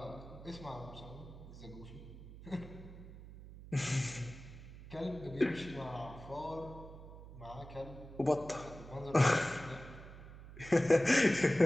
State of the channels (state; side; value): noise; right; hum, 15 dB below the sound